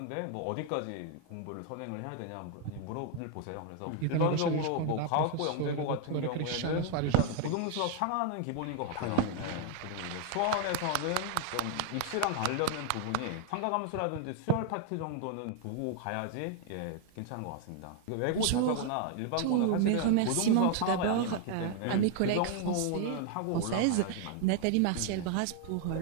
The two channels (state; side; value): different; both; correlation 0.00